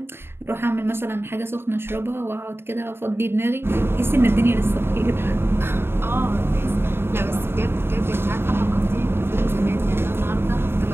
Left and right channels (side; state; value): left; late; 0.11 ms